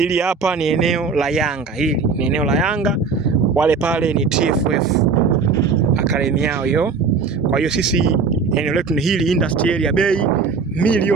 hapa ni eneo la Yanga, hili ni eneo la Yanga, wale pale ni TFF akademi yao hiyo. Kwa hiyo sisi eneo letu ni hili industry area, bei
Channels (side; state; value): left; quieter; 5.0 dB